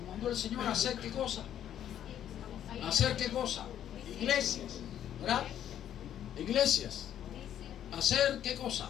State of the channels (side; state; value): right; quieter; 10.5 dB